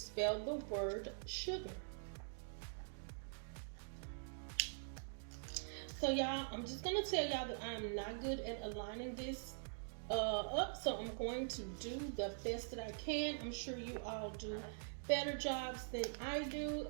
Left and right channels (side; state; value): left; silent; digital silence